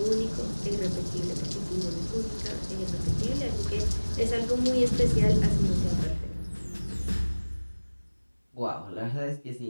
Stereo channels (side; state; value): both; inverted; correlation -1.00